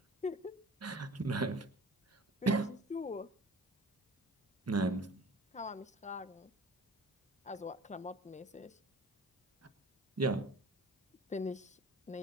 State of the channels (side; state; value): both; normal; correlation 0.44